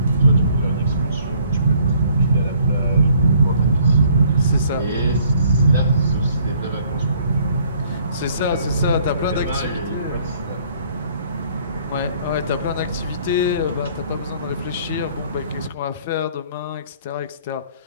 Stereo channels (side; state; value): both; inverted; correlation -0.61